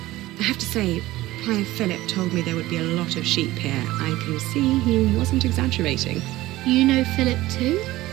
I have to say, Prior Philip told me there would be a lot of sheep here. I can see he wasn't exaggerating. You know Philip too?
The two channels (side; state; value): left; quieter; 17.2 dB